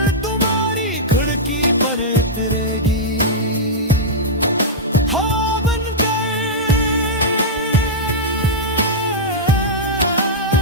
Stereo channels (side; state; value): both; normal; correlation -0.08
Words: तुम्हारी खिड़की पर उतरेगी।